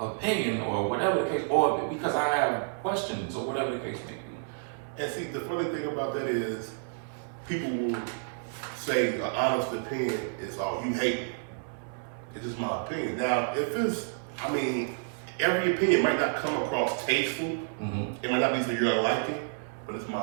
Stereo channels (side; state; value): left; silent; 58 dB below the other